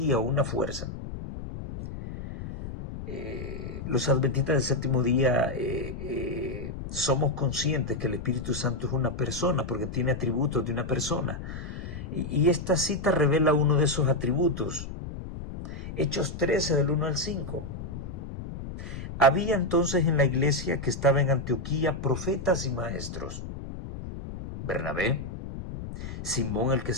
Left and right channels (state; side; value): noise; left; rumble, 9 dB below the sound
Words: o una fuerza. Los adventistas del séptimo día somos conscientes que el Espíritu Santo es una persona porque tiene atributos de una persona. Y esta cita revela uno de esos atributos. Hechos 13 del 1 al 5. Había entonces en la iglesia que estaba en Antioquía profetas y maestros. Bernabé, Simón el que